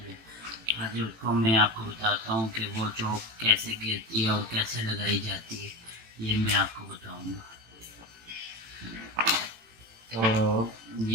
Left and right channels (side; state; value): left; late; 18 ms